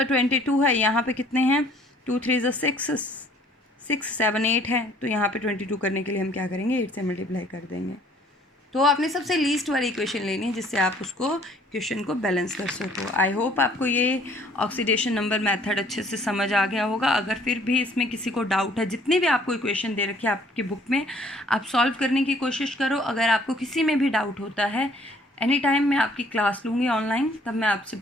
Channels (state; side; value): normal; both; correlation 0.58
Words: 22 है, यहाँ पे कितने हैं 2 3 6 6 7 8 है, तो यहाँ पे 22 करने के लिए हम क्या करेंगे 8 से मल्टीप्लाई कर देंगे, तो आपने सबसे लीस्ट वाली इक्वेशन लेनी है जिससे आप उसको क्वेश्चन को बैलेंस कर सको। आई होप आपको ये ऑक्सीडेशन नंबर मेथड अच्छे से समझ आ गया होगा। अगर फिर भी इसमें किसी को डाउट है, जितनी भी आपको इक्वेशन दे रखी है आपकी बुक में, आप सॉल्व करने की कोशिश करो। अगर आपको किसी में भी डाउट होता है, एनी टाइम मैं आपकी क्लास लूँगी ऑनलाइन, तब मैं आपसे